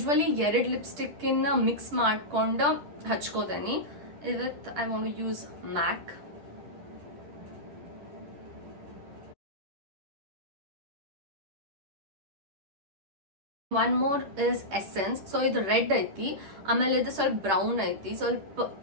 2 ಲಿಪ್ಸ್ಟಿಕ್ ಮಿಕ್ಸ್ ಮಾಡ್ಕೊಂಡು ಹಚ್ಕೋತೇನೆ. ಇವತ್ತು I want to use MAC. One more is Essence. So ಇದು ರೆಡ್ ಐತಿ, ಆಮೇಲೆ ಇದು ಸ್ವಲ್ಪ ಬ್ರೌನ್ ಐತಿ. ಸ್ವಲ್ಪ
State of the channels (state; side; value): late; left; 10 ms